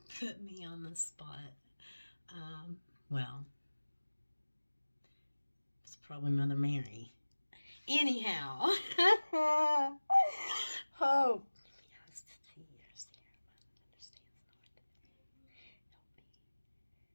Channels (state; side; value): inverted; both; correlation -1.00